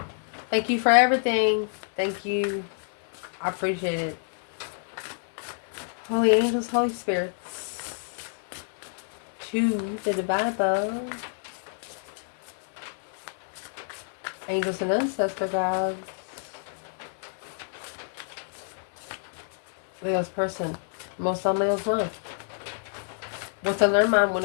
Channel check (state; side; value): silent; right; digital silence